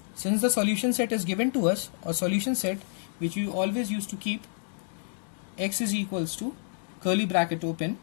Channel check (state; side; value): silent; right; digital silence